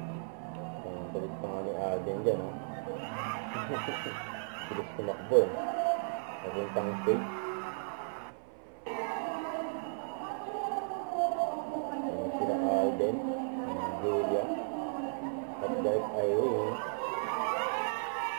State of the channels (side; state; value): left; silent; 55 dB below the other